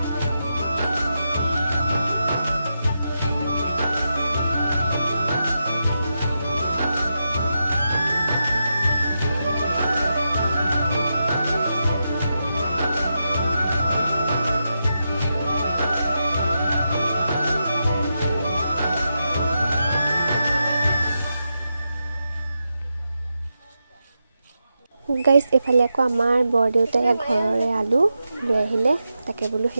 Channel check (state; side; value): inverted; both; correlation -0.86